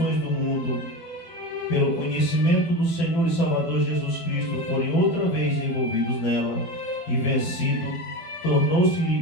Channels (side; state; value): right; late; 12 ms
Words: do mundo, pelo conhecimento do Senhor e Salvador Jesus Cristo, forem outra vez envolvidos nela e vencido,